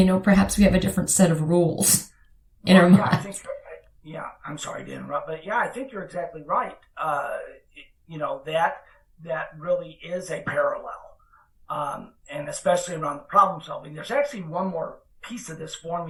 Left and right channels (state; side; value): identical; both; correlation 1.00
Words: we have a different set of rules in our minds. I'm sorry to interrupt, but I think you're exactly right. That really is a parallel. And especially around the problem solving. There's actually one more piece of this